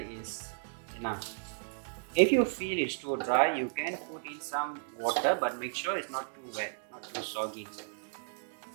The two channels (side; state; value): left; silent; digital silence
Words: enough. If you feel it's too dry, you can put in some water, but make sure it's not too wet, not too soggy.